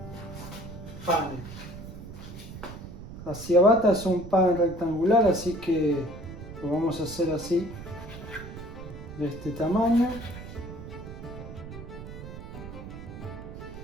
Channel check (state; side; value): noise; right; rumble, 12 dB below the sound